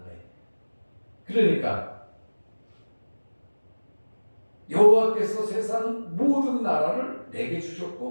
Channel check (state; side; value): inverted; both; correlation -1.00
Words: 거예요. 그러니까 여호와께서 세상 모든 나라를 내게